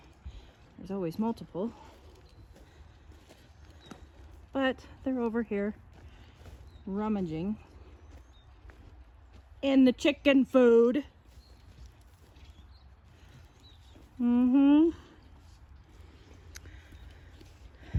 There's always multiple. But they're over here rummaging in the chicken food.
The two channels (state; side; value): identical; both; correlation 1.00